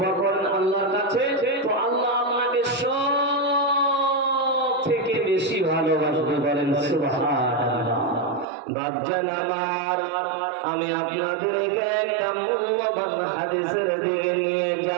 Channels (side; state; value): left; drops out; at 8.5 s